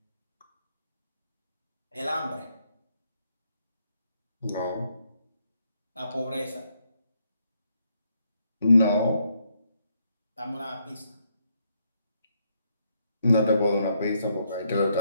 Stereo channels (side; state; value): both; inverted; correlation -0.76